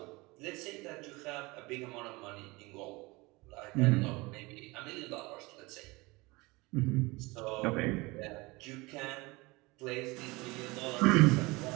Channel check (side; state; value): left; quieter; 23.6 dB